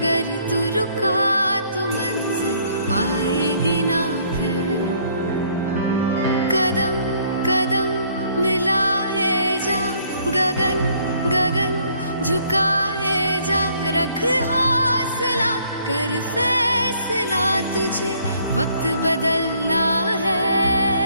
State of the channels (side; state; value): both; inverted; correlation -0.63